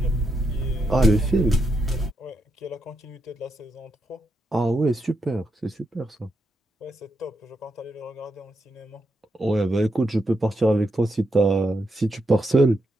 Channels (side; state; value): both; normal; correlation 0.82